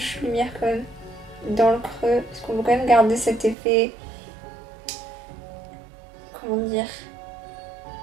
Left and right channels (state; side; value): drops out; left; at 3.6 s